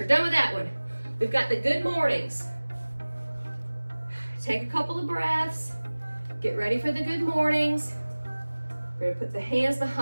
done with that one. We've got the good mornings. Take a couple of breaths. Get ready for the good mornings. We're gonna put the hands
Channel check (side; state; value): both; inverted; correlation -1.00